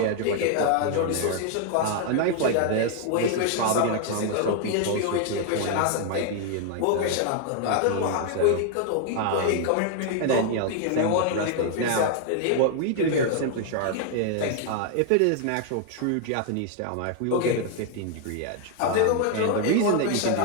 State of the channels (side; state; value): both; different; correlation 0.00